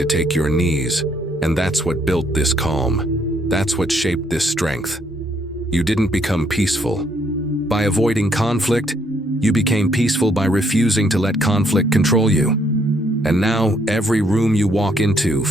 take your knees. And that's what built this calm. That's what shaped this strength. You didn't become peaceful by avoiding conflict. You became peaceful by refusing to let conflict control you. And now every room you walk into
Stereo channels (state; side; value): normal; both; correlation 0.70